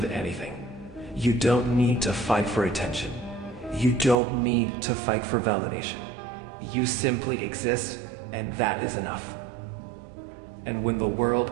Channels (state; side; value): drops out; left; at 4.2 s